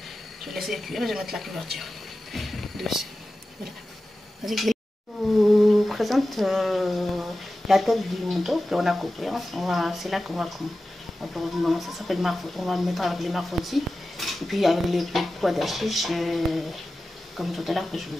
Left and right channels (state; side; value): normal; both; correlation 0.94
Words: Je vais laisser cuire et je vais mettre la couverture dessus. Voilà. Je vous présente la tête du mouton qu'on a coupé. C'est là qu'on va ça s'appelle marfot. On va le mettre avec les marfottis. Et puis avec les pois d'hachiche, comme tout à l'heure que je